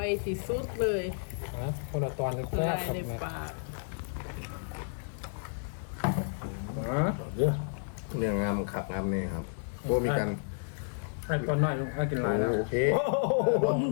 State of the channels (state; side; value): silent; right; 57 dB below the other